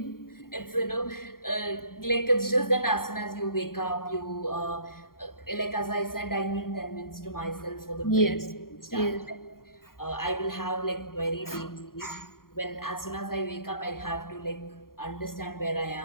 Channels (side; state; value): right; late; 0.92 ms